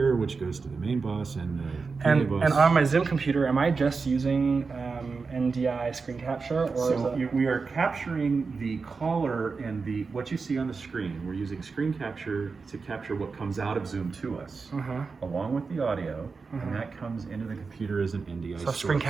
which goes to the main bus and the PA bus. And on my Zoom computer, am I just using NDI screen capture? Or we are capturing the caller and what you see on the screen. We're using screen capture to capture what comes out of Zoom to us, along with the audio, and that comes into the computer as an NDI source. Screen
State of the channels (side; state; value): left; quieter; 4.7 dB